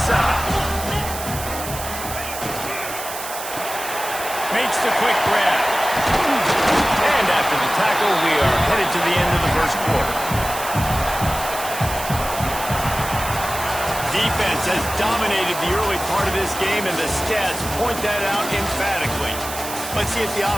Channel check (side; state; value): right; noise; hiss, 9 dB below the sound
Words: side. Makes the quick grab. And after the tackle, we are headed to the end of the first quarter. Defense has dominated the early part of this game, and the stats point that out emphatically. Let's see if the